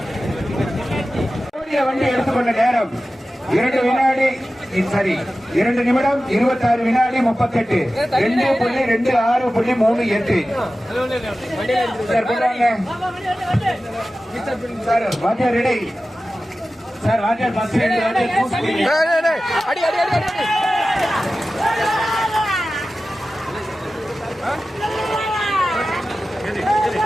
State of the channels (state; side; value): normal; both; correlation 0.95